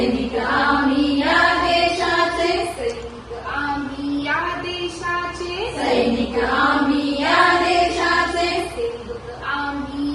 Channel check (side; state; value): both; identical; correlation 1.00